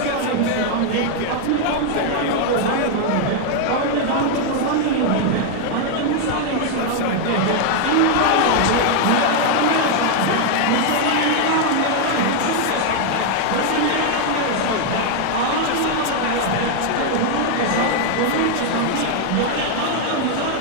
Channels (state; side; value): different; both; correlation 0.00